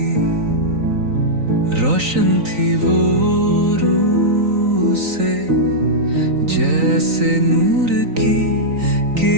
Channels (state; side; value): late; left; 3.9 ms